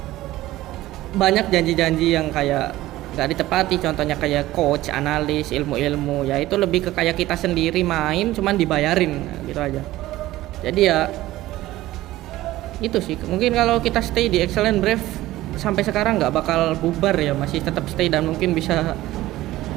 banyak janji-janji yang kayak nggak ditepati, contohnya kayak coach, analis, ilmu-ilmu, ya itu lebih ke kayak kita sendiri main cuman dibayarin gitu aja. Jadi ya itu sih, mungkin kalau kita stay di Excellent Brave sampai sekarang nggak bakal bubar ya, masih tetap stay dan mungkin bisa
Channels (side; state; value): left; quieter; 16.2 dB